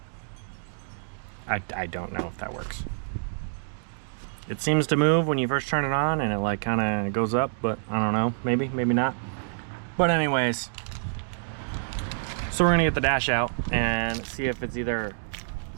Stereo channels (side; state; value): left; silent; digital silence